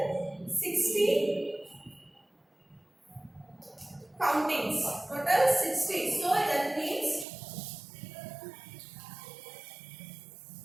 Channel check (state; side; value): drops out; left; at 7.2 s